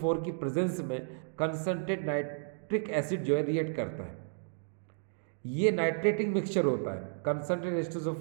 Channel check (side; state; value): left; silent; digital silence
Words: की प्रेजेंस में कंसनट्रेट नाइट्रिक एसिड जो है रिएक्ट करता है। ये नाइट्रेटिंग मिक्सचर होता है, concentrated